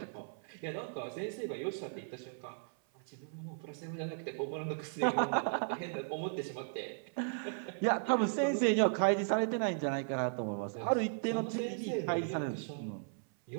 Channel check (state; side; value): silent; left; 54 dB below the other